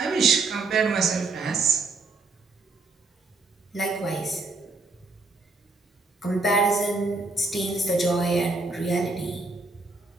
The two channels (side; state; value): left; quieter; 3.6 dB